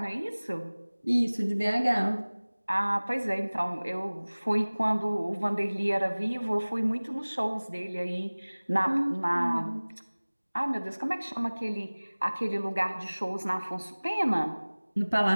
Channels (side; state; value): both; inverted; correlation -1.00